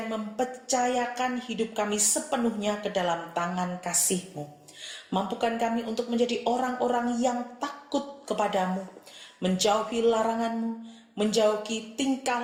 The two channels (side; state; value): both; identical; correlation 1.00